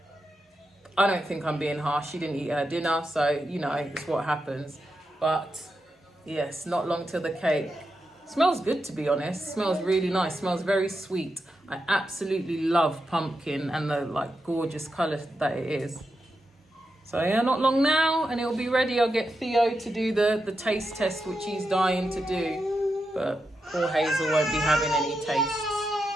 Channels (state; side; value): normal; both; correlation 0.87